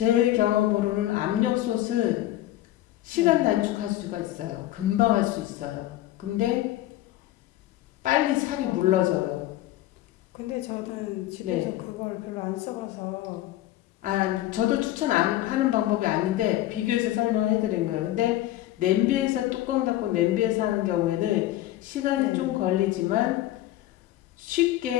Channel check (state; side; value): quieter; right; 14.7 dB